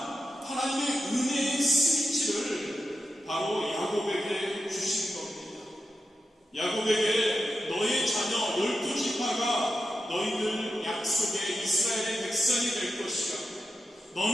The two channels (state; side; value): normal; both; correlation 0.89